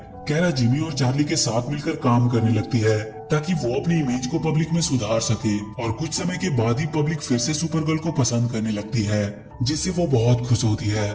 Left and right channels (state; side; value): identical; both; correlation 1.00